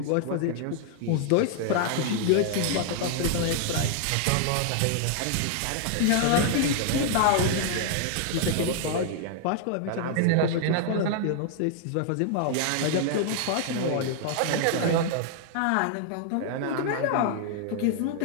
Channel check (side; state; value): both; different; correlation 0.00